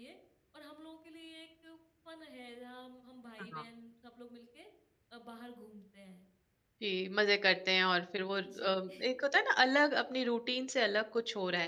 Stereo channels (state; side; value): identical; both; correlation 1.00